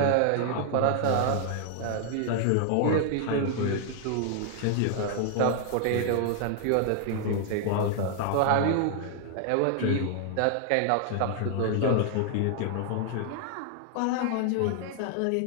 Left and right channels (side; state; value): both; different; correlation 0.00